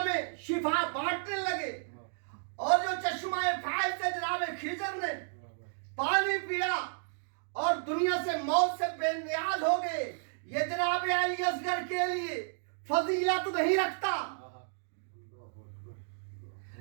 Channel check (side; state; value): left; silent; digital silence